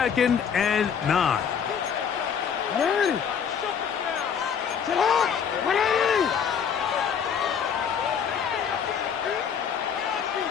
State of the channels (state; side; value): quieter; right; 7.4 dB